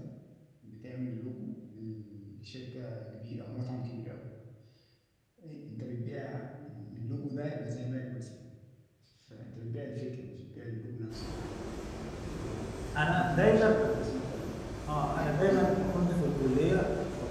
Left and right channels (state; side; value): identical; both; correlation 1.00